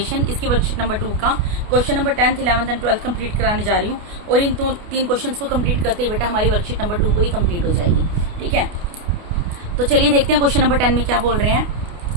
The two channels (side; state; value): left; late; 29 ms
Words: इसकी वर्कशीट नंबर 2 का question number 10th 11th and 12th complete कराने जा रही हूँ। और इन तीन क्वेश्चंस को कंप्लीट करते ही बेटा हमारी वर्कशीट नंबर 2 पूरी कंप्लीट हो जाएगी। ठीक है, तो चलिए देखते हैं क्वेश्चन नंबर 10 में क्या बोल रहे हैं।